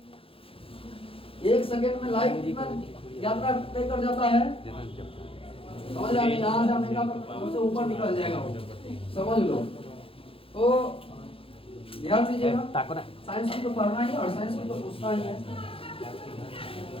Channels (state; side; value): late; right; 0.27 ms